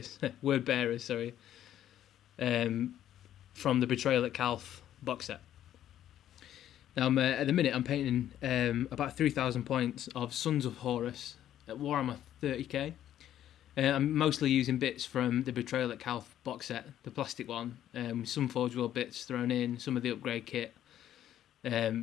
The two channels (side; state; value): right; quieter; 11.5 dB